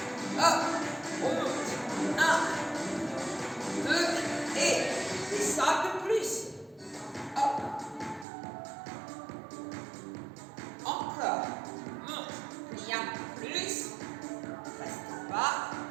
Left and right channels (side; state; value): left; drops out; at 8.2 s